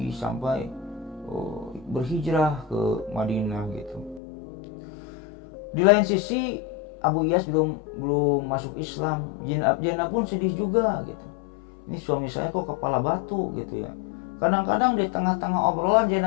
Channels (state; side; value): drops out; right; at 4.2 s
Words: sampai berhijrah ke Madinah gitu. Di lain sisi Abu Iyas belum masuk Islam. Zainab pun sedih juga gitu. Ini suami saya kok kepala batu gitu ya. Kadang-kadang di tengah-tengah obrolan